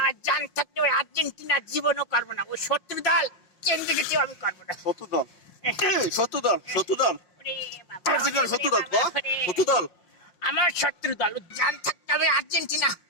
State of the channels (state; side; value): late; right; 5.7 ms